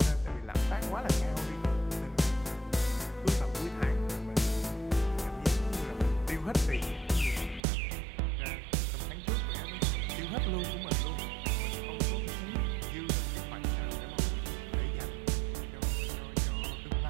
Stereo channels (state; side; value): drops out; left; at 7.6 s